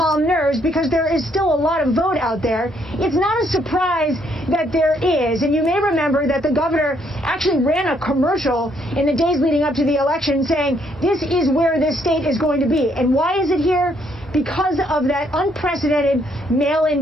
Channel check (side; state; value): both; normal; correlation 0.70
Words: nerves because there is still a lot of vote out there. It's not a surprise that there is. And you may remember that the governor actually ran a commercial in the days leading up to the election saying, this is where this state is going to be. And why is it here? Because of that unprecedented